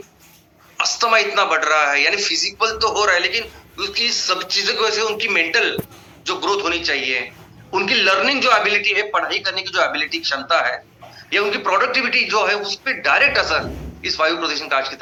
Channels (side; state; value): both; identical; correlation 1.00